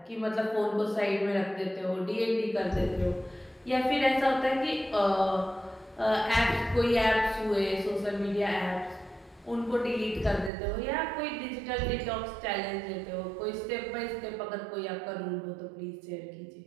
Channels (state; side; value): drops out; left; at 10.5 s